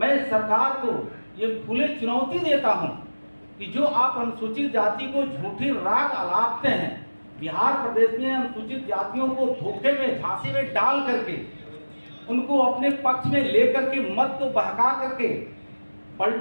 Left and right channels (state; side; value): inverted; both; correlation -1.00